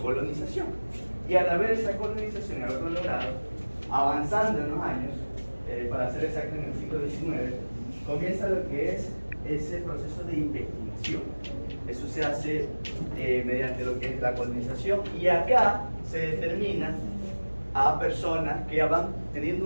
Y al haber esa colonización y haberlo logrado, avanzando en los años, para ser exacto en el siglo XIX, comienza lo que es ese proceso de investigación. Eso se hace mediante lo que es la colonización, y acá se determina a personas que van teniendo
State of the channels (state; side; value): inverted; both; correlation -1.00